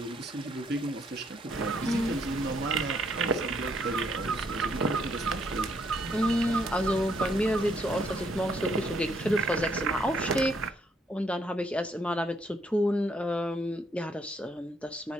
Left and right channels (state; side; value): normal; both; correlation 0.71